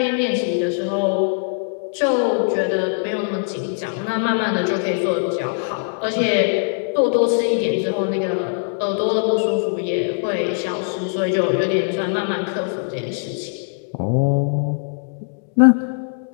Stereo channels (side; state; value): right; silent; digital silence